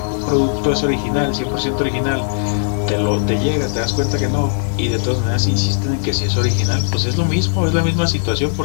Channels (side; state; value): right; silent; digital silence